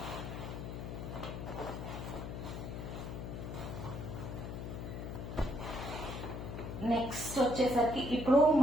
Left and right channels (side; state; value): left; noise; hum, 6 dB below the sound